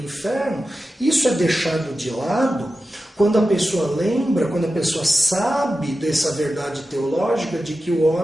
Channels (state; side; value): normal; both; correlation 0.93